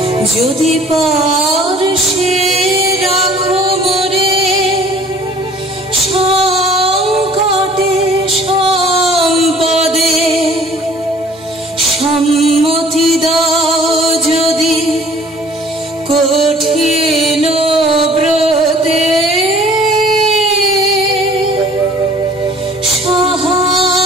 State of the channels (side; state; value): both; normal; correlation 0.53